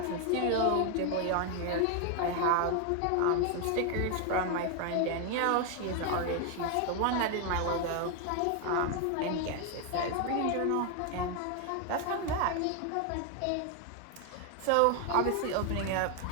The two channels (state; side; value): different; both; correlation 0.01